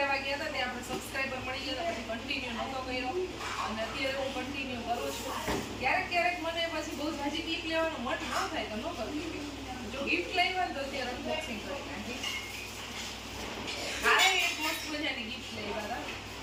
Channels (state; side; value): identical; both; correlation 1.00